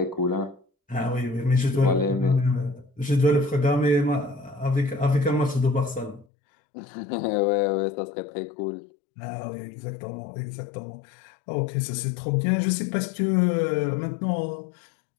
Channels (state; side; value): drops out; right; at 6.2 s